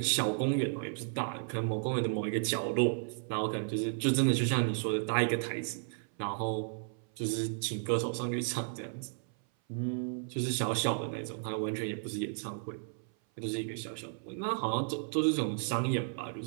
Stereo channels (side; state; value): left; silent; 55 dB below the other